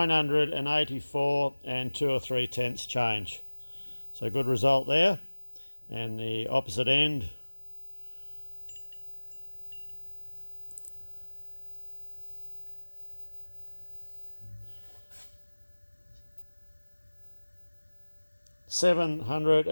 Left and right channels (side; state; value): both; inverted; correlation -1.00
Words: and 2 or 3 tenths change. So good result there. And the opposite end,